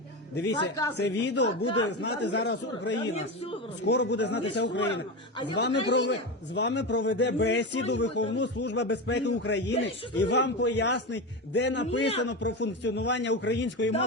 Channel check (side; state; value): both; normal; correlation 0.20